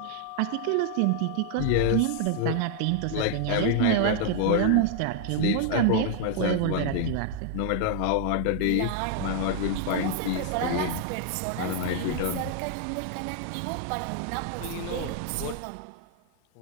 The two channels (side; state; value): both; different; correlation 0.00